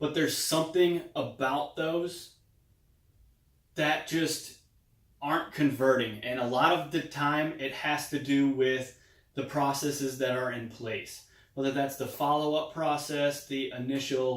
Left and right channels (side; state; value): both; identical; correlation 1.00